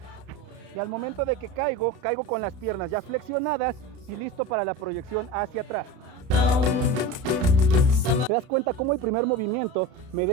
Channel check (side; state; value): left; late; 32 ms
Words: Y al momento de que caigo con las piernas ya flexionadas y listo para la proyección hacia atrás. ¿Te das cuenta cómo el primer movimiento me da